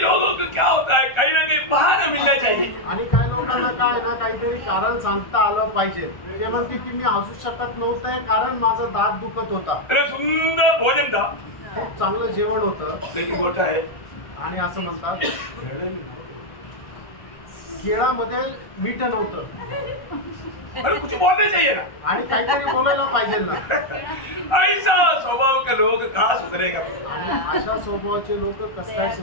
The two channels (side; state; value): right; late; 1.3 ms